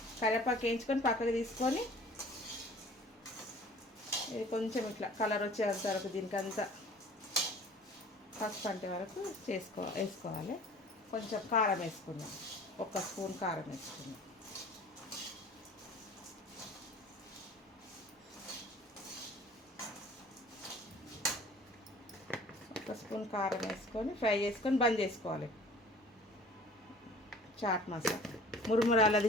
కరివేపాకు వేయించుకొని పక్కకు తీసుకొని ఇది కొంచెం ఇట్లా కలర్ వచ్చేంత వరకు దీనికంతా పసుపు అంటే వరకు వేసుకోవాలి. కొంచెం కారం వేసుకున్నాం, 1 స్పూన్ కారం వేసుకున్నాం. ఒక స్పూన్ కారం వేసుకొని ఫ్రై చేసుకొని బంద్ చేసుకోవాలి. చాట్ మసాలా,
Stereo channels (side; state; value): both; normal; correlation 0.48